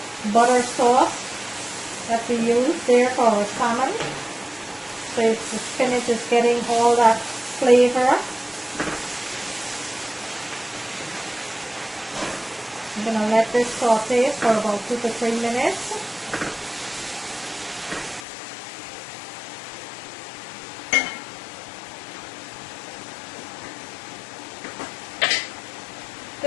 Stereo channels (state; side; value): drops out; right; at 18.2 s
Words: butter sauce that we use there for our salmon. So the spinach is getting all that flavor. I'm going to let this saute for about 2 to 3 minutes.